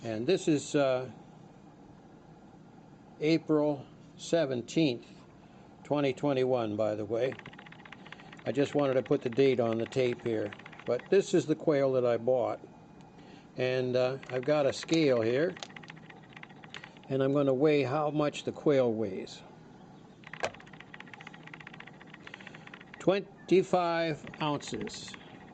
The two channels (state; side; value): identical; both; correlation 1.00